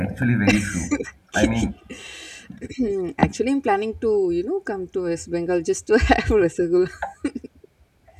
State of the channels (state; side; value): identical; both; correlation 1.00